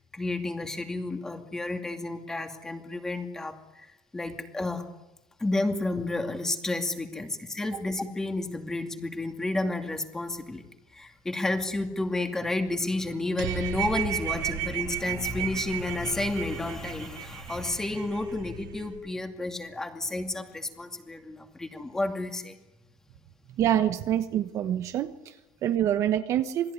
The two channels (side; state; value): both; normal; correlation 0.66